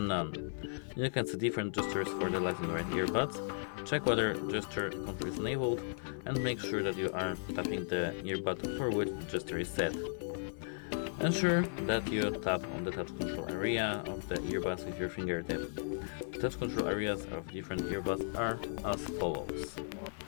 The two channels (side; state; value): right; silent; digital silence